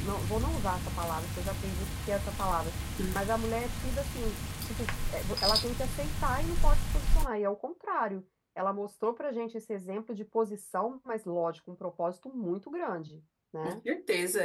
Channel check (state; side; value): identical; both; correlation 1.00